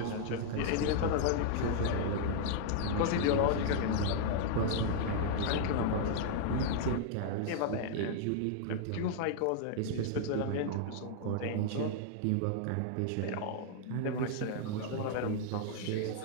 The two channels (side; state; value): both; different; correlation -0.01